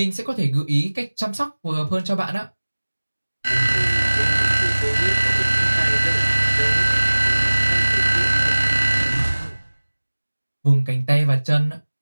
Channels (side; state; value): both; inverted; correlation -1.00